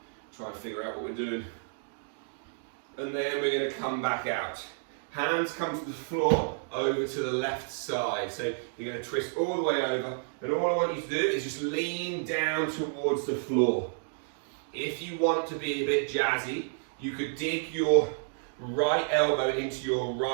try and figure out what we're doing. And then we're going to come back out. Hands come to the floor, over to the left side. So you're going to twist all the way over, and all I want you to do is just lean down towards the floor. If you want to be a bit jazzy, you could dig your right elbow into your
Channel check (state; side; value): silent; left; digital silence